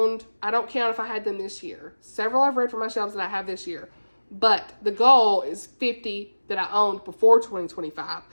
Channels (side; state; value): both; inverted; correlation -1.00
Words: I don't count if I had them this year. Several I've read from my shelves that I have this year. But the goal is 50 that I owned before 2025.